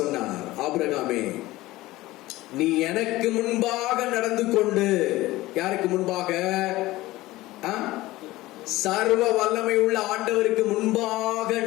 சொன்னார், ஆபிரகாமே, நீ எனக்கு முன்பாக நடந்து கொண்டு. யாருக்கு முன்பாக? சர்வ வல்லமை உள்ள ஆண்டவருக்கு முன்பாக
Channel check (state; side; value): quieter; right; 18.0 dB